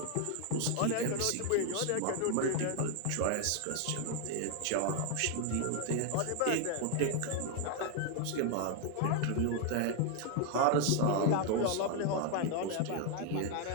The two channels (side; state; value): both; different; correlation 0.01